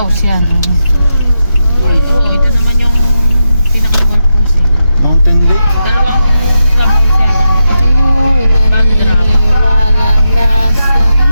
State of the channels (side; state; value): both; inverted; correlation -0.87